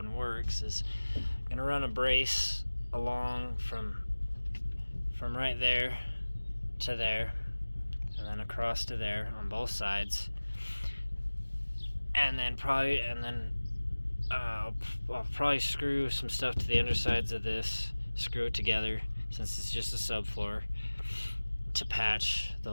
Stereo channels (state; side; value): inverted; both; correlation -1.00